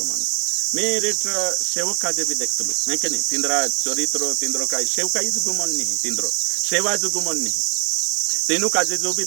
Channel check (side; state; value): left; quieter; 36.8 dB